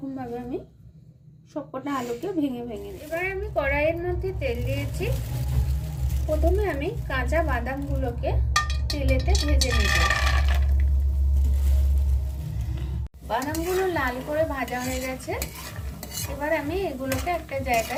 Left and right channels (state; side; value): identical; both; correlation 1.00